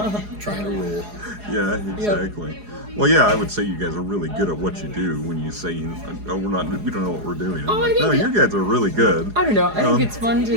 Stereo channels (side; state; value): left; late; 4.8 ms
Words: Trying to rule. Yeah, exactly. Well, yeah, I would say you guys are really good at what you do. When you say, "Oh, we don't know what we're doing." I'm Oh, I like, no, think you guys are really good. I don't know. I think it's fun